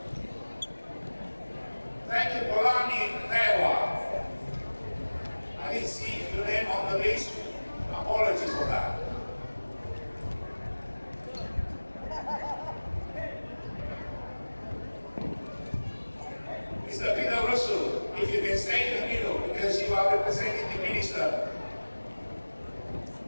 Thank you, Polani Dewa. I didn't see your name on the list. Apologies for that. Mr. Peter Russell, if you can stay in the middle because you are representing the minister.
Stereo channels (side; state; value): both; inverted; correlation -1.00